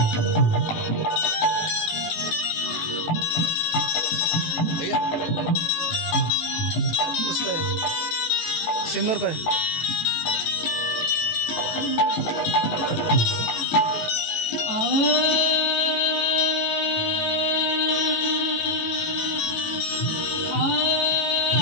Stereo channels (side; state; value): right; late; 18 ms